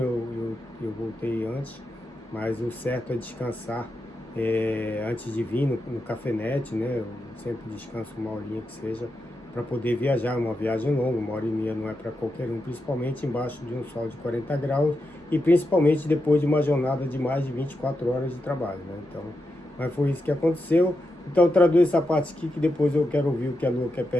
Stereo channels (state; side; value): normal; both; correlation 0.87